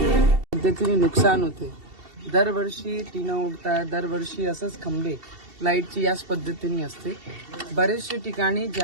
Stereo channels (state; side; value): late; left; 2.7 ms